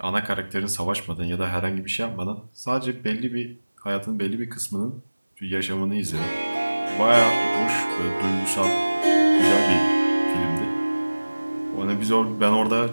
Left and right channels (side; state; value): both; inverted; correlation -1.00